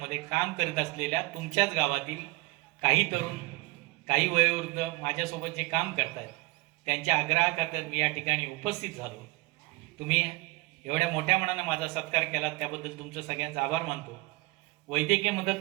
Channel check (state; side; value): quieter; left; 23.2 dB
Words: काम करत असलेल्या तुमच्याच गावातील काही तरुण, काही वयोवृद्ध माझ्यासोबत जे काम करतात त्यांच्या आग्रहाखातर मी या ठिकाणी उपस्थित झालो. तुम्ही एवढ्या मोठ्या मनाने माझा सत्कार केला त्याबद्दल तुमचं सगळ्यांचा आभार मानतो. वैद्यकीय मदत